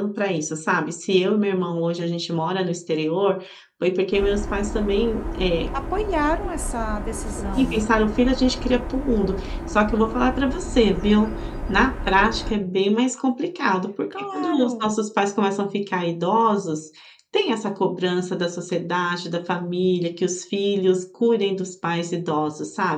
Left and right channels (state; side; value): identical; both; correlation 1.00